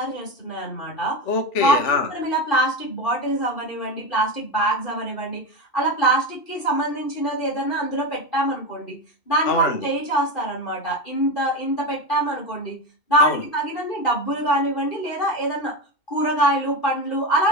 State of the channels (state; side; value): late; right; 2.7 ms